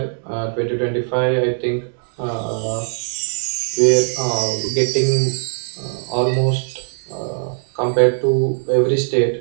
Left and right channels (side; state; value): left; silent; digital silence